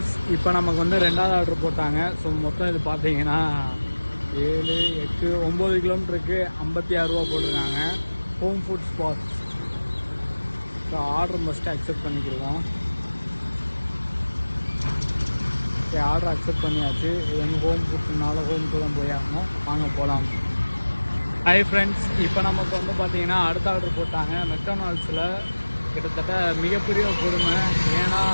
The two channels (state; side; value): inverted; both; correlation -1.00